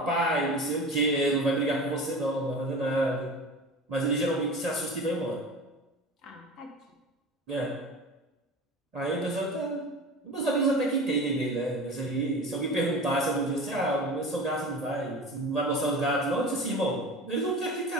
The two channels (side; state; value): both; normal; correlation 0.34